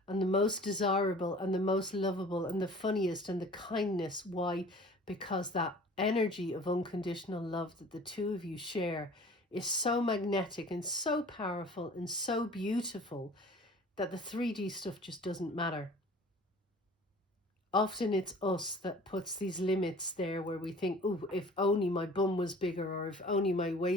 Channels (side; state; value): both; normal; correlation 0.46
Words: and the most desirable and the most lovable and the funniest and the kindness. Why? Because that energy of unconditional love that the two of you share is so magnetic and so powerful and so beautiful that the 3D stuff just doesn't matter. Often it's us that puts these limits there where we think, oh, if only my bum was bigger, or if only my